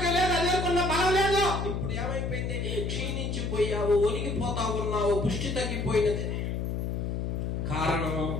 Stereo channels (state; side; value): noise; left; hum, 2 dB below the sound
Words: లేదు, అది అనుకున్న బలం లేదు. ఇప్పుడు ఏమైపోయింది? క్షీణించిపోయావు, ఒరిగిపోతా ఉన్నావు, పుష్టి తగ్గిపోయినది. కారణం